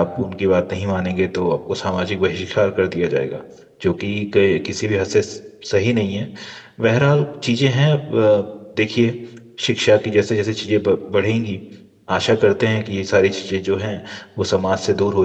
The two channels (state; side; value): identical; both; correlation 1.00